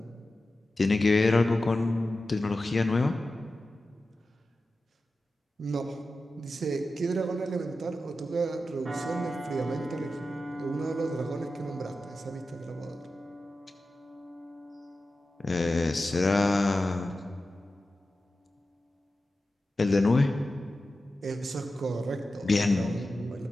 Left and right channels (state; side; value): normal; both; correlation 0.93